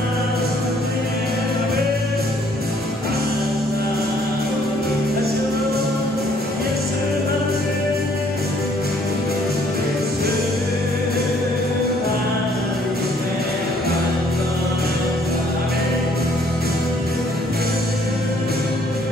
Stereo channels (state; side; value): normal; both; correlation 0.62